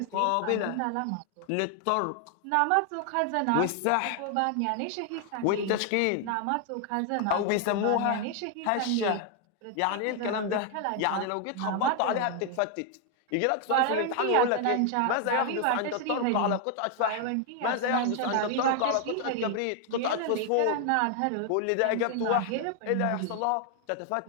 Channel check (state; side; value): different; both; correlation 0.00